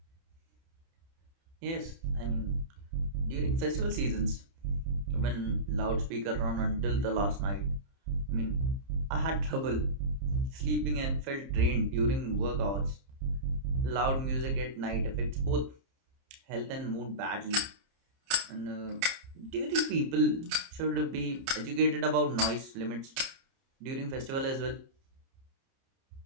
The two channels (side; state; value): left; late; 30 ms